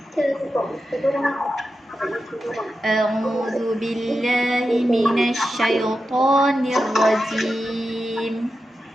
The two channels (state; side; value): normal; both; correlation 0.90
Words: A'udzu billahi minasy syaithanir rajim.